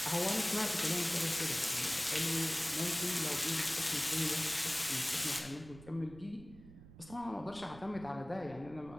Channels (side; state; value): right; noise; rumble, 19 dB below the sound